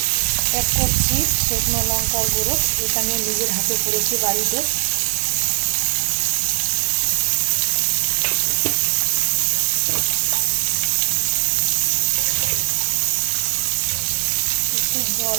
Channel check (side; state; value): left; silent; digital silence